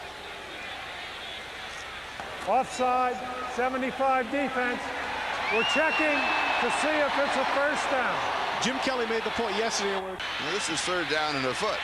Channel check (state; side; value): identical; both; correlation 1.00